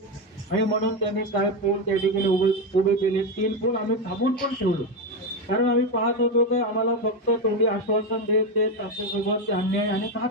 आणि म्हणून त्यांनी काय पोल त्या ठिकाणी उभे केले, 3 पोल आम्ही थांबून पण ठेवलो, कारण आम्ही पाहत होतो की आम्हाला फक्त तोंडी आश्वासन देत आमच्यासोबत अन्याय आणि घात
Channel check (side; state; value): both; normal; correlation 0.11